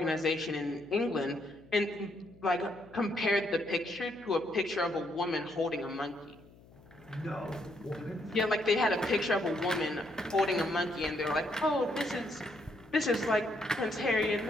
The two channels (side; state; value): left; noise; hum, 24 dB below the sound